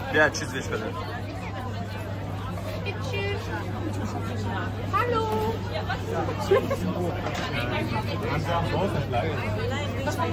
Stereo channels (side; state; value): both; identical; correlation 1.00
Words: Ja, tschüss, ich bin. Hallo.